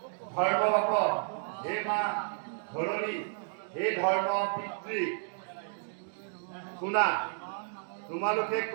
ধৰ্ম বাপ হে মা ধৰণী হে ধৰ্ম পিতৃ শুনা, তোমালোকে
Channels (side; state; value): left; silent; digital silence